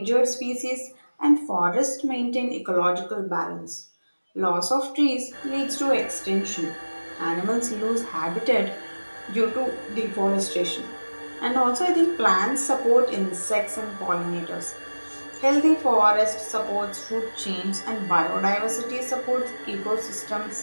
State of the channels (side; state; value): both; inverted; correlation -1.00